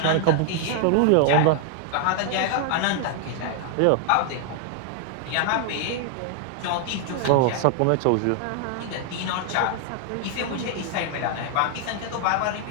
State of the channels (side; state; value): both; different; correlation 0.00